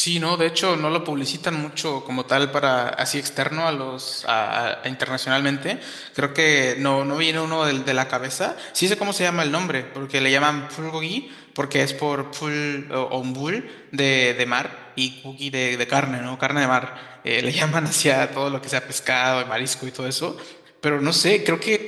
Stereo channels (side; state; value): both; identical; correlation 1.00